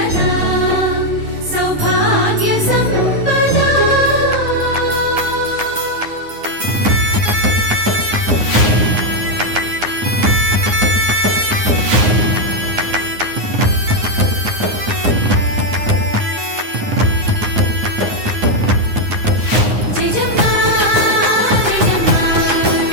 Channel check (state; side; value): late; left; 9.6 ms